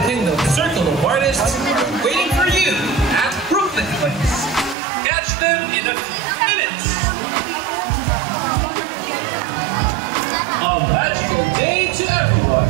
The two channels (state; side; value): drops out; left; at 4.8 s